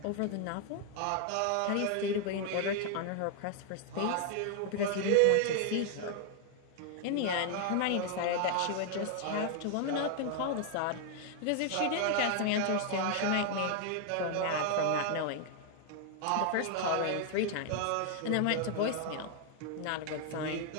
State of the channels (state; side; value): different; both; correlation 0.00